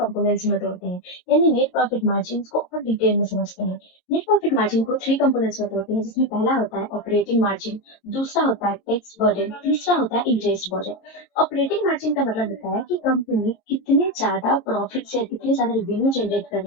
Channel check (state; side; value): late; right; 22 ms